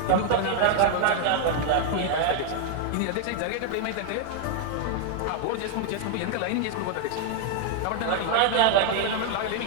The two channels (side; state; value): both; different; correlation 0.00